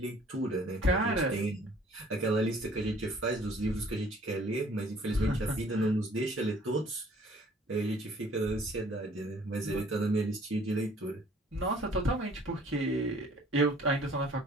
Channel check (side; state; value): both; normal; correlation 0.56